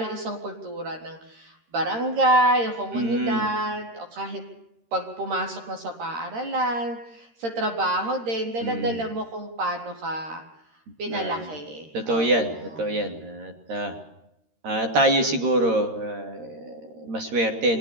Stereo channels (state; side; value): late; left; 13 ms